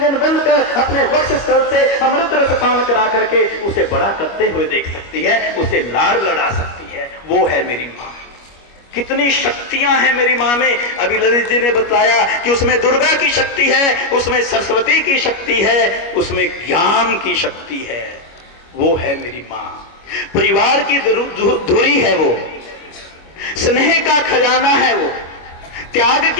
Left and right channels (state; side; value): late; right; 25 ms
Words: बंद कर अपने वक्ष स्थल से अमृत रस पान करा करके उसे बड़ा करते हुए देख सकती है, उसे लाड़ लड़ा सकती है। वो है मेरी मां। कितनी शक्तियां हैं मेरी मां में। अभी ललित जी ने बताया कि उसमें दुर्गा की शक्ति है, उसमें सरस्वती की शक्ति है, उसमें ज्ञान की शक्ति है। वो है मेरी मां। परिवार की धुरी है वो, स्नेह का खजाना है वो, त्याग